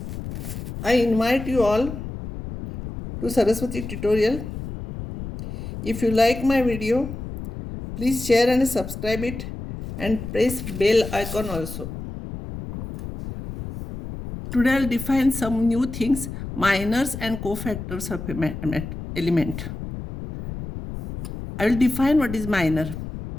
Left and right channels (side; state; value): left; noise; rumble, 8 dB below the sound